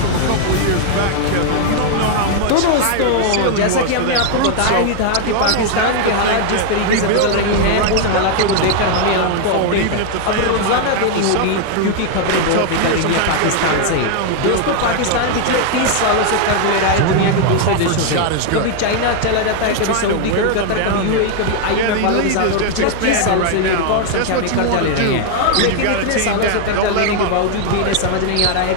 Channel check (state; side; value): different; both; correlation 0.00